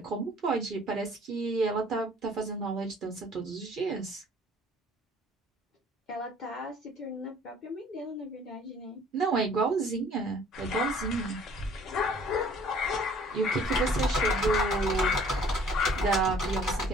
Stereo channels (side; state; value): both; normal; correlation 0.55